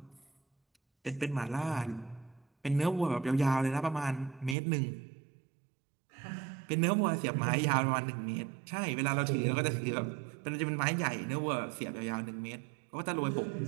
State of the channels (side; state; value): left; drops out; at 4.5 s